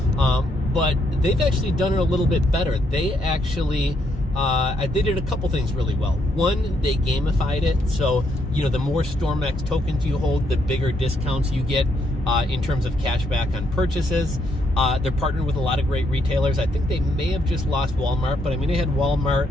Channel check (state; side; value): normal; both; correlation 0.75